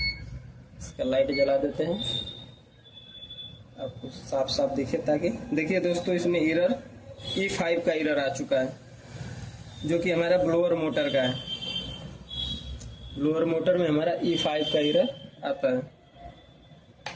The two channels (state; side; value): identical; both; correlation 1.00